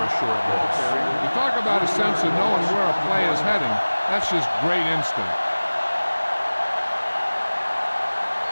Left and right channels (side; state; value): both; inverted; correlation -1.00